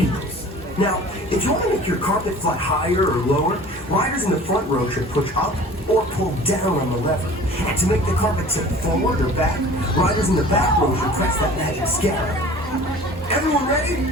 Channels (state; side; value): normal; both; correlation 0.45